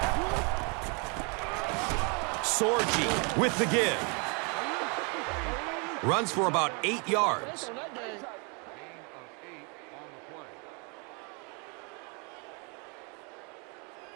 Sorgi with the give. Runs for about 8 yards.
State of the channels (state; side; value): quieter; left; 33.6 dB